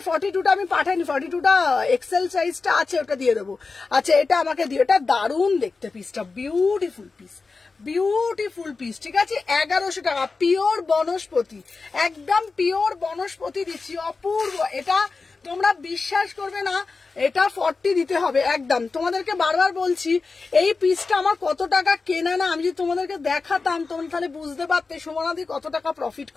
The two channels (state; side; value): quieter; right; 4.2 dB